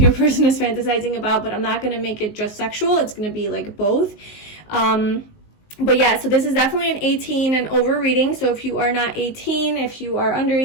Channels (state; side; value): late; right; 19 ms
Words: person is fantasizing about, but I'm not going to make it just sexual. It's going to be both. But yeah, so this is definitely an 18 and over reading. So if you are not 18, if you are under